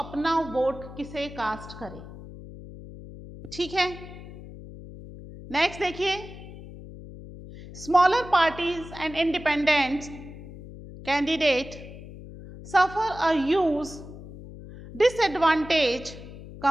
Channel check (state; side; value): noise; left; hum, 14 dB below the sound